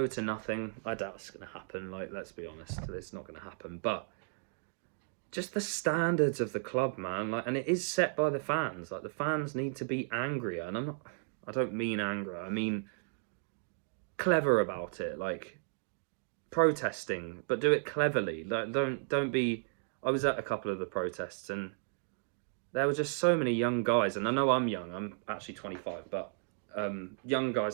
to nothing. I doubt it's going to happen. Like, let's be honest, it's not going to happen. But just the standards of the club, man. Like, and it is set by the fans. Like, the fans need to be angrier, and I don't mean anger. I mean clever about it. Like, protesting, but do it cleverly. Like, don't be. I was at a couple of the protests, and there were just so many young guys. And I know I'm young. I'm actually 25, but young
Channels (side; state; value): left; silent; digital silence